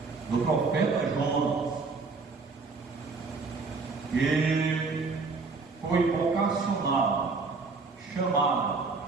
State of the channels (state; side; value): quieter; left; 4.2 dB